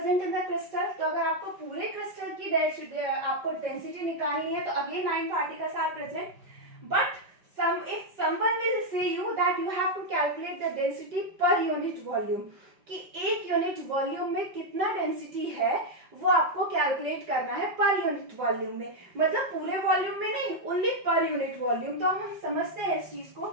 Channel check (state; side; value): late; left; 5.3 ms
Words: in the crystal. तो अगर आपको पूरे क्रिस्टल की आपको डेंसिटी निकालनी है तो again 9 particles are present. But if someone will say you that you have to calculate the density per unit volume, कि एक यूनिट वॉल्यूम में कितना डेंसिटी है वो आपको कैलकुलेट करना है पर यूनिट वॉल्यूम में. मतलब पूरे वॉल्यूम में नहीं, ओनली पर यूनिट वॉल्यूम. तो हम समझते हैं इस चीज को.